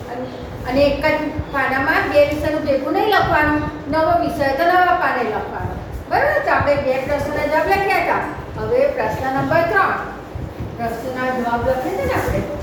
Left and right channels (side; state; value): both; identical; correlation 1.00